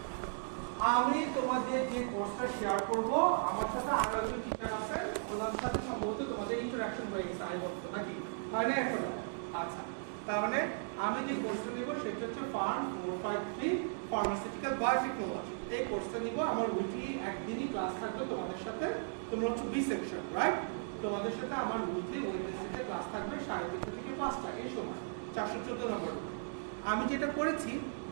আমি তোমাদের যে কোর্সটা শেয়ার করব, আমার সাথে আরো একজন টিচার আছেন, ওনার সাথে সম্ভবত তোমাদের ইন্টারঅ্যাকশন হয়ে গেছে আই বলতো নাকি হয় না এখন? আচ্ছা, তার মানে আমি যে কোর্সটা নিব সেটা হচ্ছে ফার্ম 453 ফার্মাসিউটিক্যাল বায়োটেকনোলজি। এই কোর্সটা নিব, আমার উইকলি একদিনই ক্লাস থাকবে তোমাদের সাথে। তোমরা হচ্ছে বি সেকশন, রাইট? তোমাদের সাথে আমার উইকলি ওয়েডনেসডে ক্লাস থাকবে 3:30 থেকে 5টা এই সময়, 414 নম্বর। আমি যেটা করেছি,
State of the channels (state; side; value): silent; left; digital silence